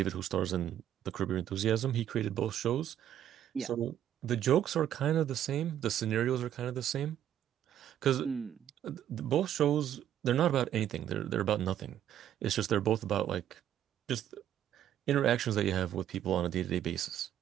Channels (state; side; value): quieter; left; 10.8 dB